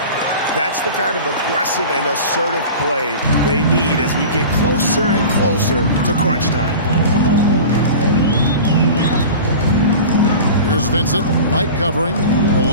That's the kind of aggressive and assertive play they need as we get closer and closer to crunch time. Here's Vincent. White covering.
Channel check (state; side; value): inverted; both; correlation -0.35